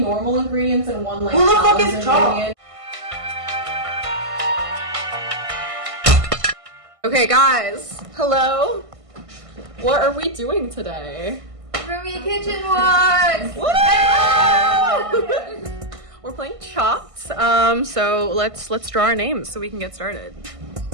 ingredients and 1 like who the fuck salad is chopped? ingredient. Okay guys, hello. What are we doing today? Roomie kitchen walk! We're playing Chopped. So let's draw our names so we can get started.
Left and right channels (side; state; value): left; late; 1.5 ms